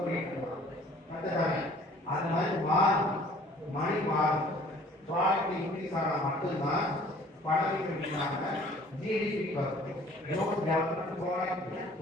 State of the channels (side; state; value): both; normal; correlation 0.53